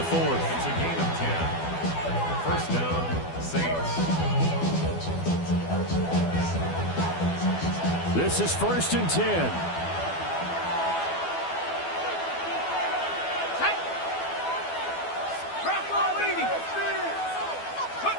4th. It's a gain of 10. 1st down, Saints. This is 1st and 10.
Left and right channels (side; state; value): right; late; 12 ms